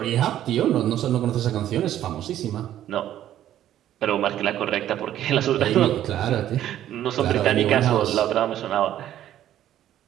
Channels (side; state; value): left; quieter; 11.9 dB